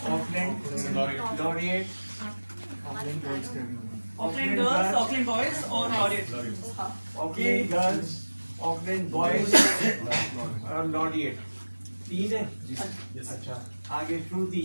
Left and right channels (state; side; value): inverted; both; correlation -1.00